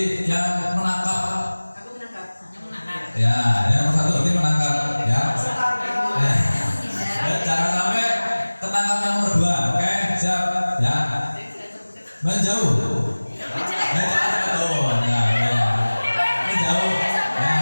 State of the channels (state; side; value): inverted; both; correlation -1.00